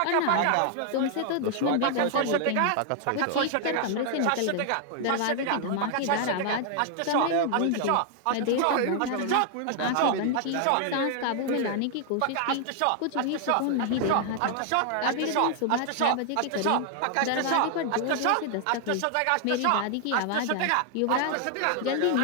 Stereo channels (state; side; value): different; both; correlation 0.00